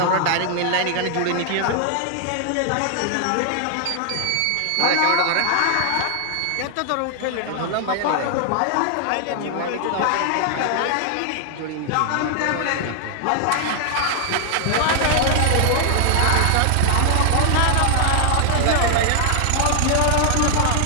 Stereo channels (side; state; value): both; different; correlation 0.00